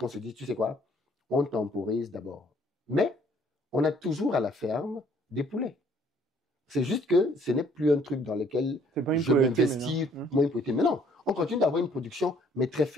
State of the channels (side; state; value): both; normal; correlation 0.61